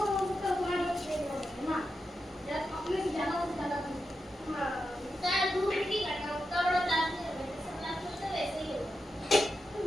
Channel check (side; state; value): both; normal; correlation 0.88